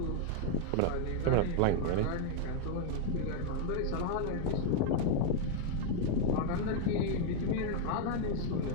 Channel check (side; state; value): both; different; correlation 0.00